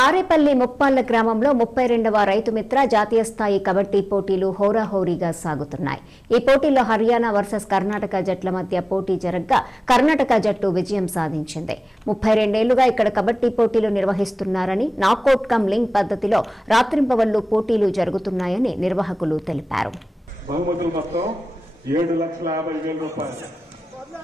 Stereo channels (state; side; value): normal; both; correlation 0.98